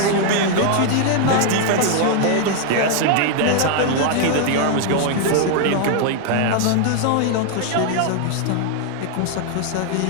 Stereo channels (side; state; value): both; different; correlation 0.00